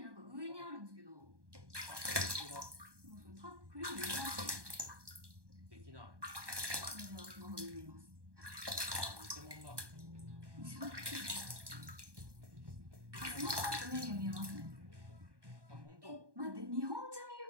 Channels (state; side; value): late; left; 1.2 ms